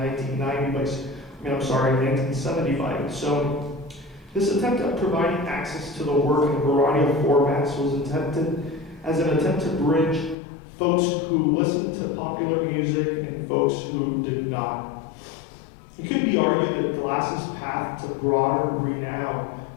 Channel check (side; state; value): right; drops out; at 10.4 s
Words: by Sony. This attempt at providing access to the work in a variety of formats was intended as an attempt to bridge folks who listened to popular music and folks who did not. It could be argued that Glass's path to broader renown